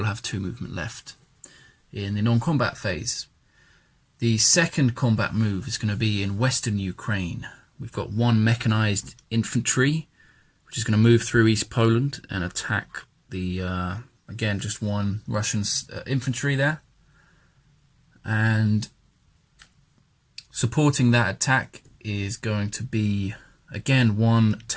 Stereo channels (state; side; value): identical; both; correlation 1.00